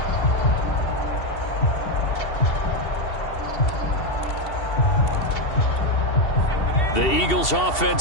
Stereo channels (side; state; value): right; late; 2.7 ms